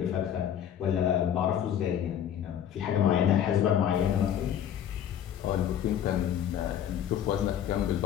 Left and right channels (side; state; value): right; quieter; 9.8 dB